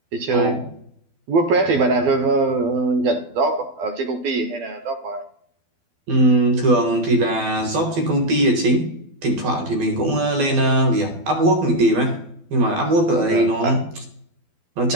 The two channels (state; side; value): late; left; 12 ms